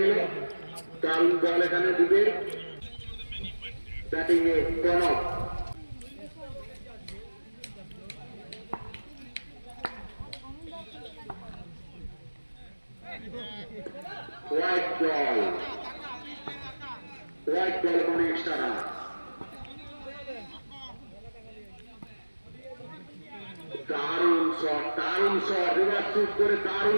নিল। দারুণ বল এখানে দিবে। ব্যাটিং এ Pranab, white ball, white ball মানে এক্সট্রা রান। দারুণ শট, দারুণ শট, রিভার্স সুইপ করে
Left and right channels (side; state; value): both; inverted; correlation -1.00